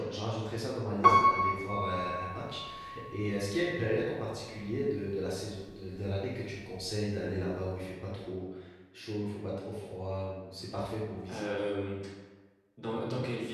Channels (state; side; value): identical; both; correlation 1.00